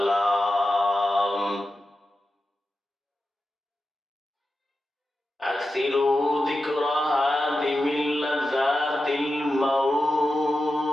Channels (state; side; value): normal; both; correlation 0.91